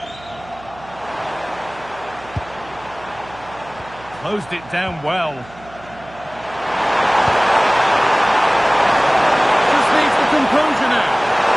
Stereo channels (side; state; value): right; noise; hum, 21 dB below the sound